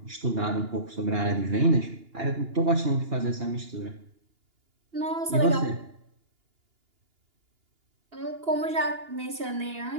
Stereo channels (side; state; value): left; late; 2.8 ms